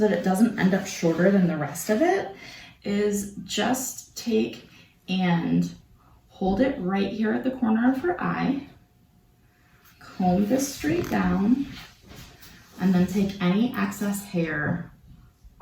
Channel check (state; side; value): identical; both; correlation 1.00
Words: that it doesn't end up shorter than the rest of it is just take and hold it right here at the corner of her eye, comb this straight down, and then take any excess hair